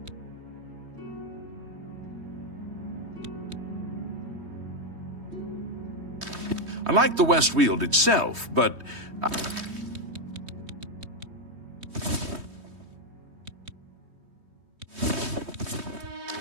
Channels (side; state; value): left; late; 3.2 ms